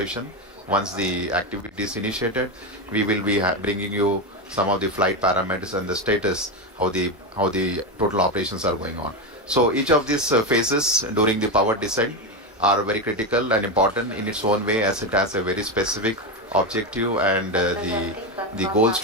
Once the activity is initiated, we will be bringing you some of the flight parameters and the status, how the total operations are going on. So each of these phases during the power descent are very critical and important in its own way, as it has a very specific objective and the goals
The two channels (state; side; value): normal; both; correlation 0.12